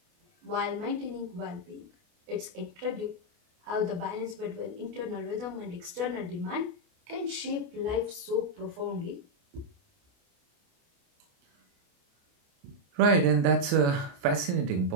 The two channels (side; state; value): left; late; 28 ms